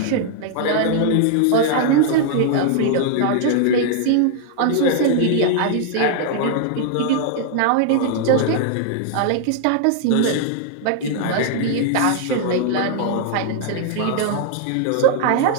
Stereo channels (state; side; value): different; both; correlation -0.01